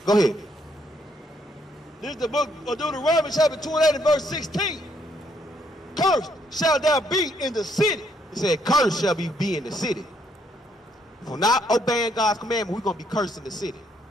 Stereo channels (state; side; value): normal; both; correlation 0.71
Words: Go ahead. This is the book of Deuteronomy, chapter 28 and verse 16. Cursed shall thou be in the city. He said, cursed shall be in the city. For not obeying God's commandment, we're going to be cursed in the city.